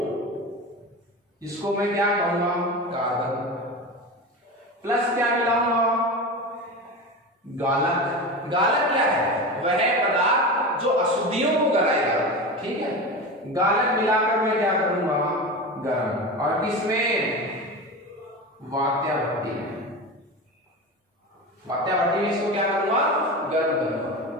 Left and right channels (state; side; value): normal; both; correlation 0.26